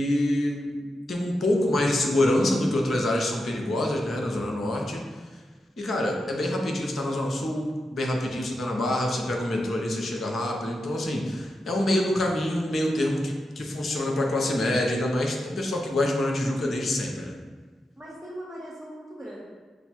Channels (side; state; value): both; normal; correlation 0.87